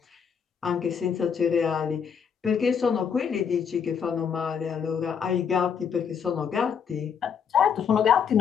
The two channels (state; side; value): quieter; right; 7.1 dB